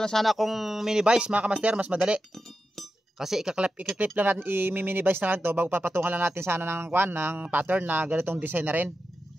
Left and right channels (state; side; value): normal; both; correlation 0.90